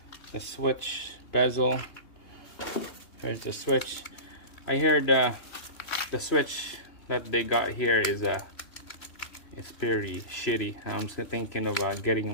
The switch, bezel. Here's the switch. I heard the switch that they got here is it's pretty shitty. I'm still thinking of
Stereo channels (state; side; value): late; right; 3.2 ms